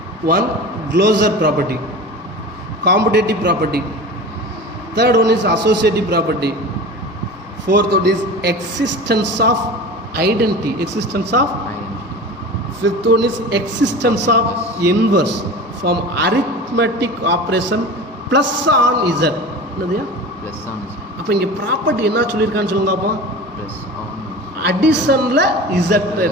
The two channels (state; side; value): normal; both; correlation 0.33